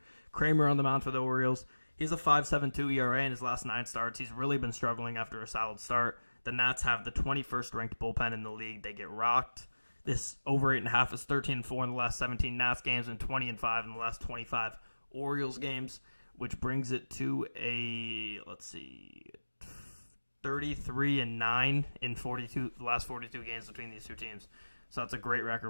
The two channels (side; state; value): both; inverted; correlation -1.00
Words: Kramer on the mound for the Orioles. He's a 5.72 ERA in his last 9 starts. He's really been struggling after a solid start. The Nats have the 21st ranked bullpen in the league. They get rocked. This over 8.5 is 13-4 in the last 17 Nats games and 20-5 in the last 25 Orioles games, which brings it to a 33-9 in the last 42 games between these two teams. So that's a great record.